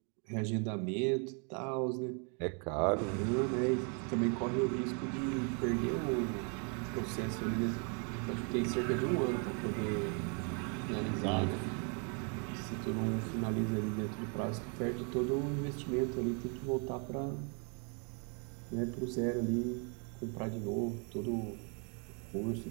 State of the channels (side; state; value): left; quieter; 38.1 dB